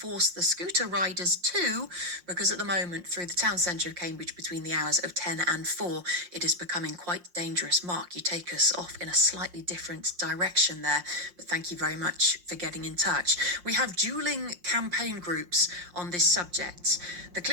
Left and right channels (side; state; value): left; late; 5.6 ms